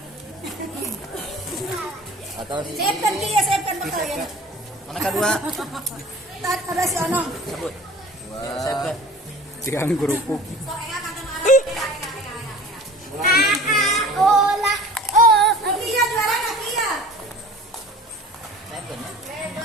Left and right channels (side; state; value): both; normal; correlation 0.42